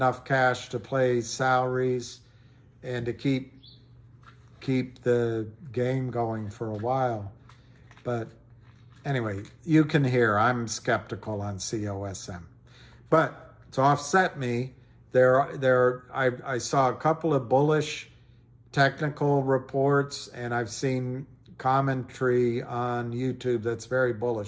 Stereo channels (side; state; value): both; identical; correlation 1.00